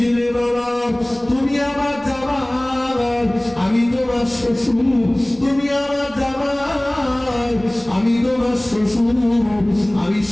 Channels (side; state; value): right; noise; rumble, 24 dB below the sound